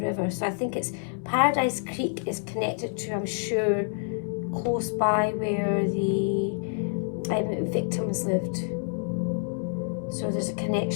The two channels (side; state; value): right; silent; 60 dB below the other